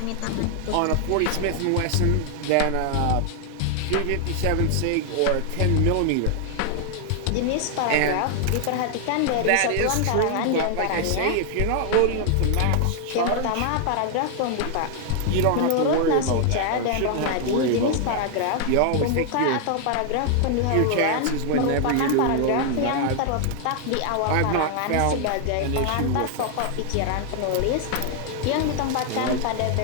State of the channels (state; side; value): different; both; correlation 0.00